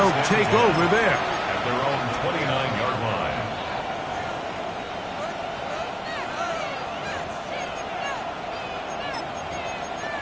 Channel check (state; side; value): identical; both; correlation 1.00